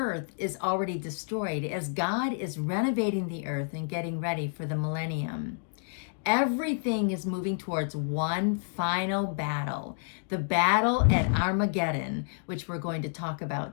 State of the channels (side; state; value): right; silent; digital silence